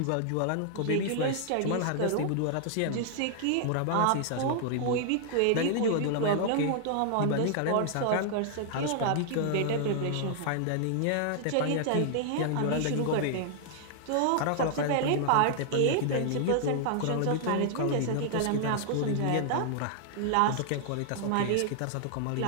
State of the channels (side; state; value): both; different; correlation -0.01